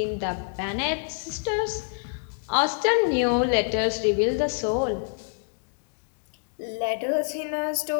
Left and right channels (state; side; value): silent; right; digital silence